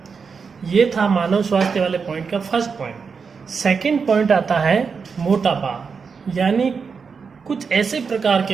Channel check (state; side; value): quieter; left; 5.5 dB